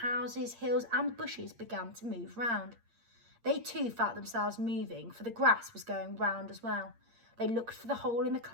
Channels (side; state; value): left; late; 8.6 ms